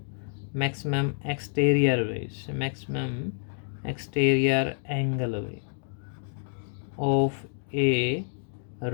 मैक्सिमम एक्सटीरियर भाई, मैक्सिमम एक्सटीरियर एंगल भाई ऑफ ए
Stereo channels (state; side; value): silent; right; digital silence